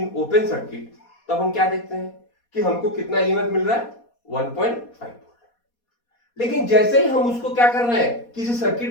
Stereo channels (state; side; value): late; right; 4.2 ms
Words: open circuit, तब हम क्या देखते हैं कि हमको कितना ईएमएफ मिल रहा है? 1.5 वोल्ट। लेकिन जैसे ही हम उसको क्या कर रहे हैं? किसी